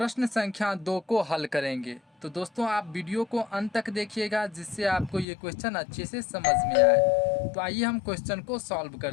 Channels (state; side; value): drops out; right; at 5.2 s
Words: संख्या 2 को हल करेंगे। तो दोस्तों, आप वीडियो को अंत तक देखिएगा जिससे आपको ये क्वेश्चन अच्छे से समझ में आए। तो आइए हम क्वेश्चन को सॉल्व